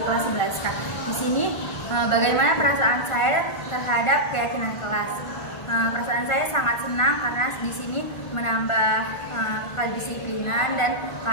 kelas 11K. Di sini bagaimana perasaan saya terhadap keyakinan kelas? Perasaan saya sangat senang karena di sini menambah kedisiplinan dan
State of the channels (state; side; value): late; right; 1.5 ms